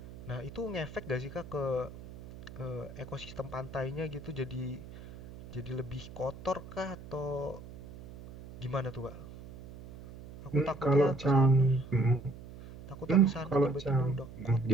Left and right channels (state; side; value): noise; right; hum, 15 dB below the sound